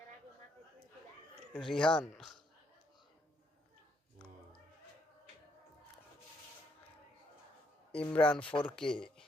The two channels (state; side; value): normal; both; correlation 0.72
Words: Rihan Imran 4K